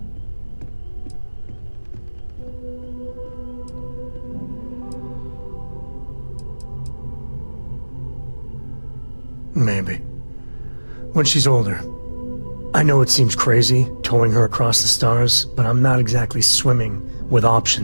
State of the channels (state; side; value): inverted; both; correlation -1.00